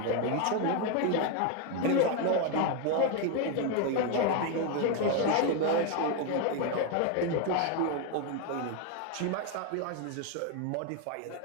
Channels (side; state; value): both; different; correlation 0.01